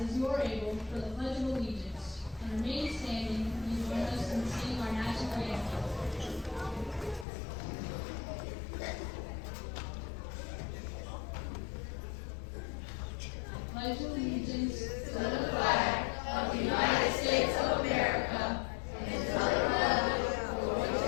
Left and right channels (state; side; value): drops out; right; at 7.2 s